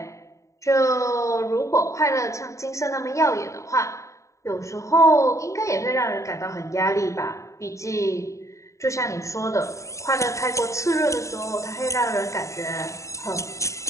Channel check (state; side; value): late; right; 0.15 ms